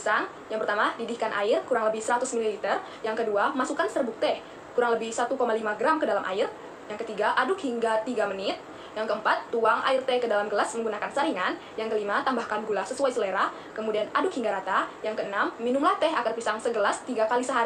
yang pertama, didihkan air kurang lebih 100 ml. Yang kedua, masukkan serbuk teh kurang lebih 1,5 gram ke dalam air. Yang ketiga, aduk hingga 3 menit. Yang keempat, tuang air teh ke dalam gelas menggunakan saringan. Yang kelima, tambahkan gula sesuai selera, kemudian aduk hingga rata. Yang keenam, minumlah teh akar pisang segelas 3 kali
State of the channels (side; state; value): both; identical; correlation 1.00